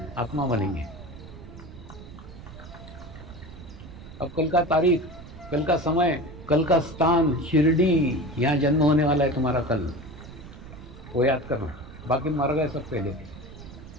आत्मा बनेंगे। अब कल का तारीख, कल का समय, कल का स्थान, शिरडी, यहाँ जन्म होने वाला है तुम्हारा कल, वो याद करना। बाकी मर गए सब पहले के।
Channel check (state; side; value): noise; right; rumble, 15 dB below the sound